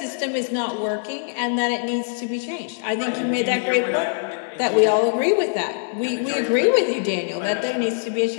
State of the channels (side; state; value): right; silent; 64 dB below the other